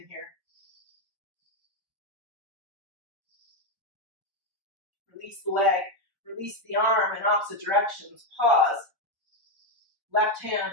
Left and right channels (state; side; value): late; left; 1.3 ms